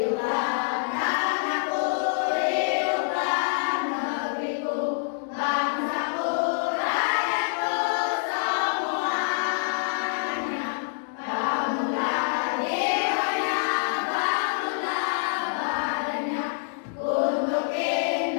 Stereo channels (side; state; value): right; silent; digital silence